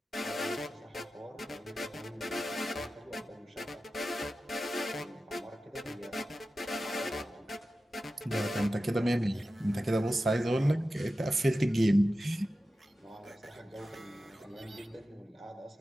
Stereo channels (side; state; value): both; normal; correlation 0.93